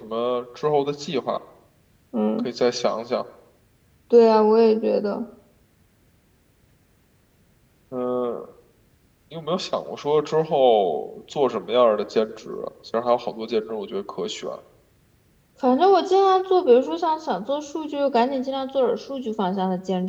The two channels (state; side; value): identical; both; correlation 1.00